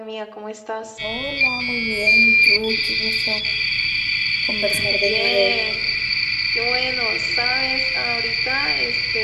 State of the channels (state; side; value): identical; both; correlation 1.00